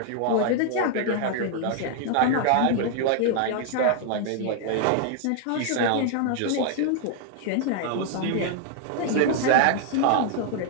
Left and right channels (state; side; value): different; both; correlation 0.00